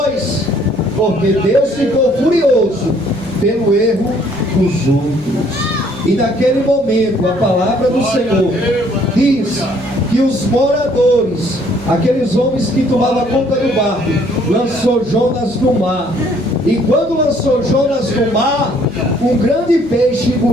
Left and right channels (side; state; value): left; noise; hum, 25 dB below the sound